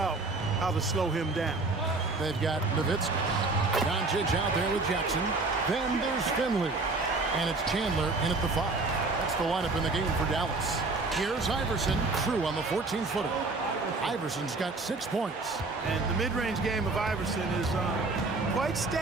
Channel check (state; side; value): quieter; left; 3.5 dB